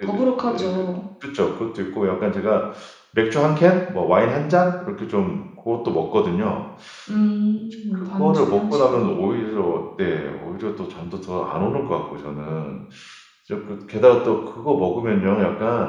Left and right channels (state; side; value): identical; both; correlation 1.00